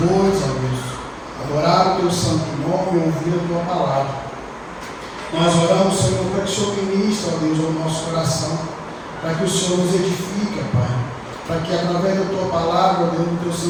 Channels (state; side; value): identical; both; correlation 1.00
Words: ó Deus, adorar o teu santo nome e ouvir a tua palavra. Nós oramos, Senhor, para que o Senhor ministre, ó Deus, ao nosso coração, para que o Senhor nos edifique, Pai, para que através da tua palavra, ó Deus, do teu